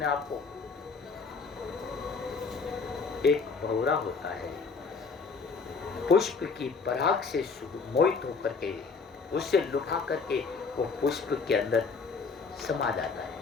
आप को। एक भंवरा होता है, पुष्प की पराग से मोहित होकर के उससे लुभा करके वो पुष्प के अंदर समा जाता है।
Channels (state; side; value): quieter; right; 4.8 dB